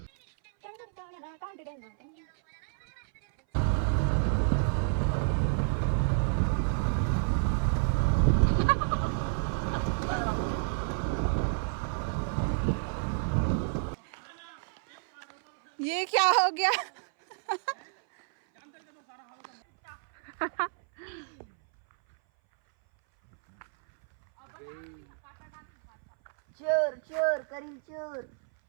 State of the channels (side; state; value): left; silent; 58 dB below the other